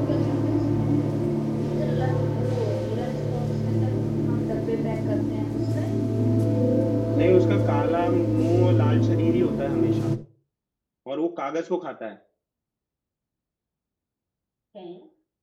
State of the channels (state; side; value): identical; both; correlation 1.00